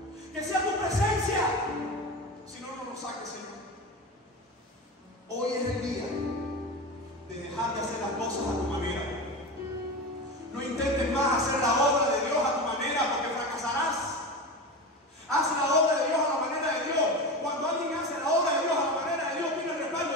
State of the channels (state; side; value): normal; both; correlation 0.25